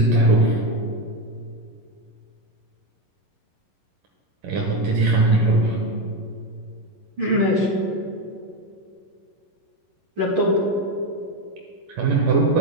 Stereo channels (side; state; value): left; late; 11 ms